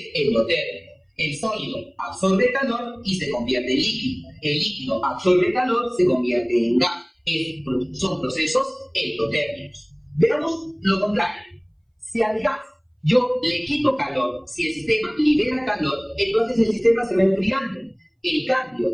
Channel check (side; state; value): both; identical; correlation 1.00